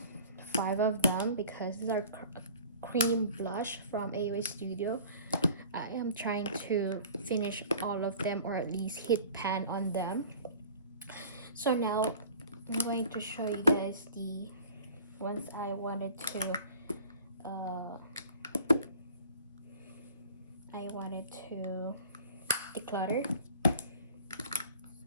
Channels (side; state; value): both; inverted; correlation -0.46